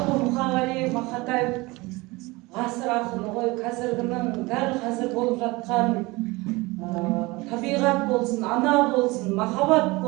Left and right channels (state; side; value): quieter; left; 22.9 dB